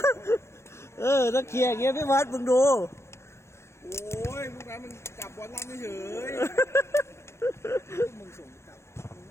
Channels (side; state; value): right; late; 0.13 ms